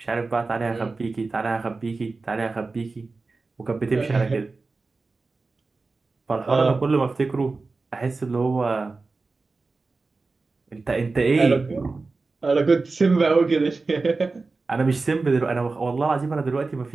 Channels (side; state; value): left; quieter; 3.8 dB